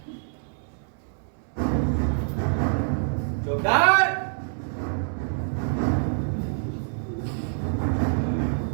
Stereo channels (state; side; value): silent; left; digital silence